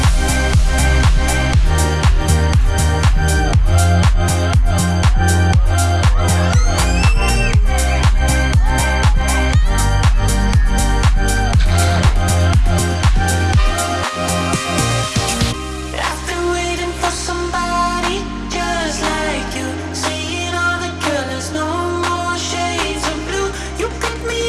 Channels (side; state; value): both; identical; correlation 1.00